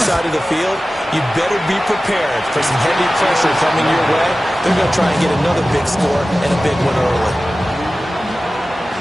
side of the field, you better be prepared for some heavy pressure coming your way. They're going to try and get another big score and a big one early.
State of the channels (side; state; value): both; normal; correlation 0.96